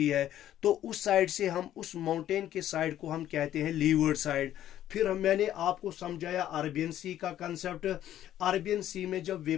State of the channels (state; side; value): quieter; right; 12.0 dB